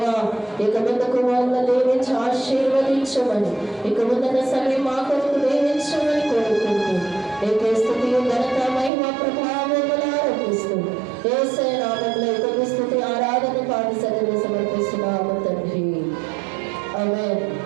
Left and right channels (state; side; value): drops out; left; at 8.9 s